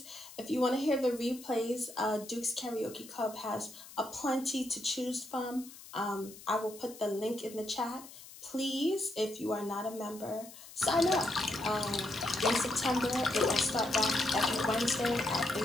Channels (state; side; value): noise; left; hiss, 17 dB below the sound